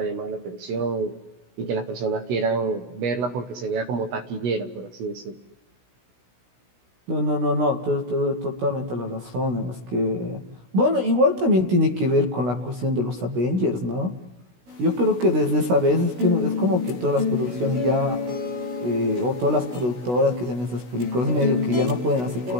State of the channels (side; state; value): left; late; 16 ms